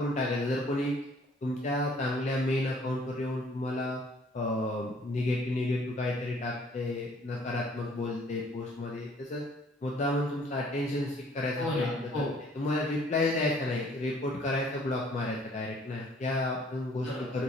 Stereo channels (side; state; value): both; normal; correlation 0.59